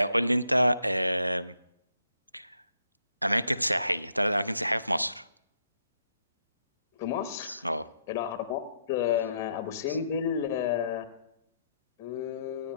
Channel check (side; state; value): both; inverted; correlation -0.74